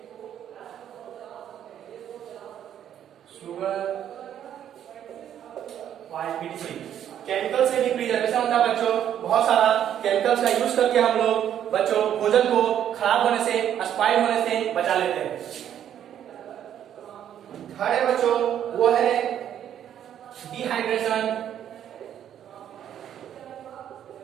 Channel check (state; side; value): quieter; left; 10.1 dB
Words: Sugar, oil, etc। Chemical से भी प्रिजर्वेशन होता है बच्चों, बहुत सारा केमिकल्स का यूज करके हम लोग बच्चों भोजन को खराब होने से, स्पॉइल होने से बचा लेते हैं। थर्ड है बच्चों वो है डिहाइड्रेशन।